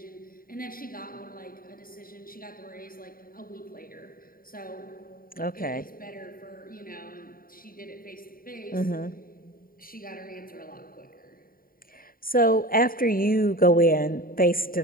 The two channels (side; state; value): right; late; 0.42 ms